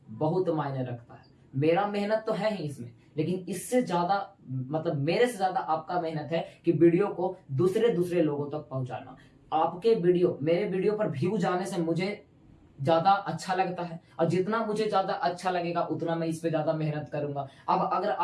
बहुत मायने रखता है। मेरा मेहनत तो है ही इसमें, लेकिन इससे ज्यादा मतलब मेरे से ज्यादा आपका मेहनत है कि वीडियो को दूसरे लोगों तक पहुंचाना। आपके वीडियो, मेरे वीडियो पर व्यू जाने से मुझे ज्यादा अच्छा लगता है, और जितना मुझे ज्यादा अच्छा लगेगा उतना मैं इस पे ज्यादा मेहनत करूंगा। अब अगर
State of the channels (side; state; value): both; identical; correlation 1.00